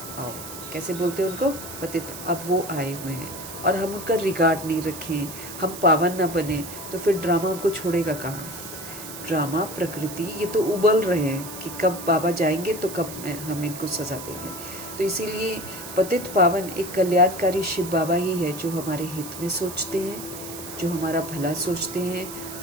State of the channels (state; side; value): noise; right; hiss, 11 dB below the sound